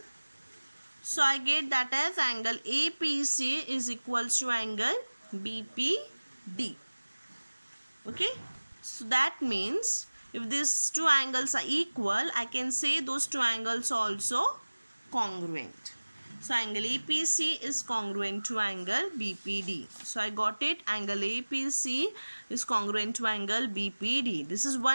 So I get that as angle APC is equals to angle BPD. Okay, so that means if these two angles are equal, I can say those two angles are also congruent. So angle APC is congruent to angle BPD. So I got it. Angle APC is congruent to angle BPD. This is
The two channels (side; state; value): both; inverted; correlation -1.00